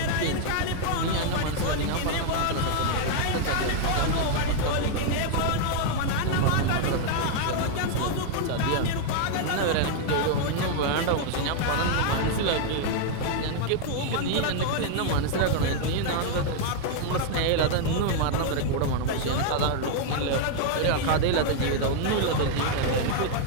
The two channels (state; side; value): different; both; correlation 0.00